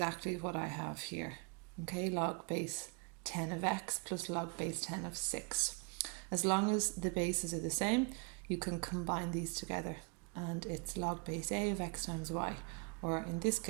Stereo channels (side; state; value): left; quieter; 34.6 dB